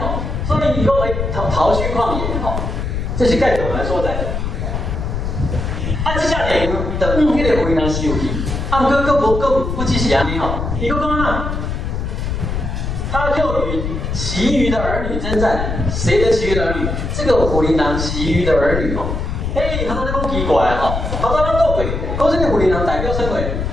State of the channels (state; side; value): noise; left; rumble, 3 dB below the sound